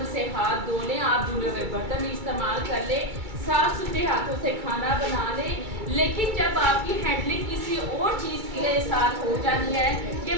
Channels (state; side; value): late; left; 2.3 ms